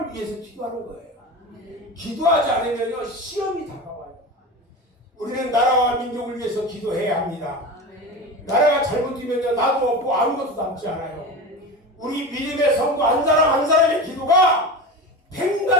위해서 기도하는 거예요. 기도하지 않으면요 시험이 다가와요. 우리는 나라와 민족을 위해서 기도해야 합니다. 나라가 잘못되면요 나도 없고 아무것도 남지 않아요. 우리 믿음의 성도 한 사람 한 사람의 기도가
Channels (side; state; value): both; normal; correlation 0.27